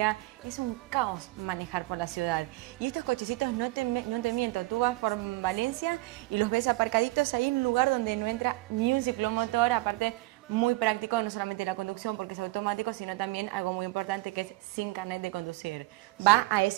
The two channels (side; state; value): left; quieter; 21.2 dB